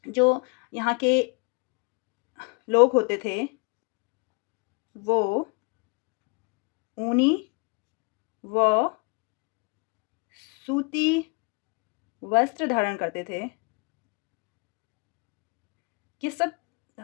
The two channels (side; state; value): right; quieter; 31.3 dB